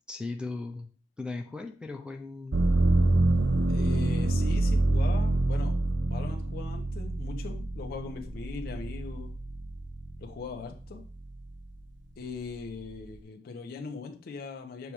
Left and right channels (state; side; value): normal; both; correlation 0.92